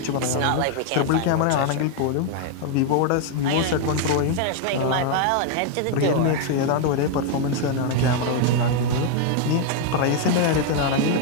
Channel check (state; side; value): different; both; correlation 0.00